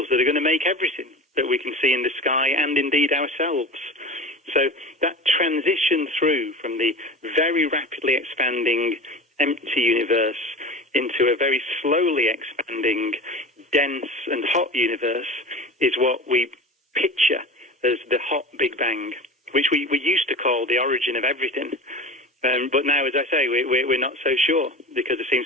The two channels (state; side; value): normal; both; correlation 0.32